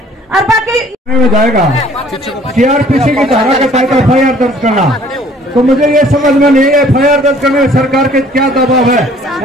और बाकी में जाएगा सीआरपीसी की धारा के तहत एफआईआर दर्ज करना। तो मुझे ये समझ में नहीं है एफआईआर दर्ज करने में सरकार के क्या दबाव है।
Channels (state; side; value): normal; both; correlation 0.56